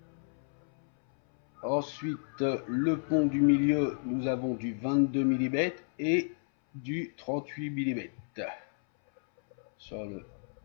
Ensuite, le pont du milieu, nous avons du 22 mm et du 38 mm. Sur le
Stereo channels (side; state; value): right; silent; 57 dB below the other